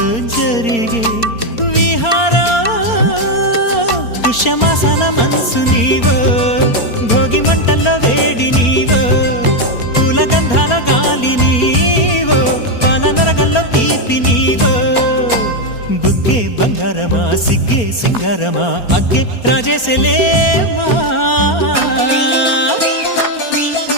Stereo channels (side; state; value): right; late; 4.3 ms